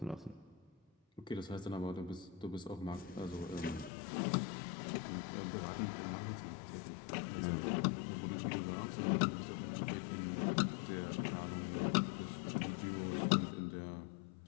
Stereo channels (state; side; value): drops out; right; at 3.9 s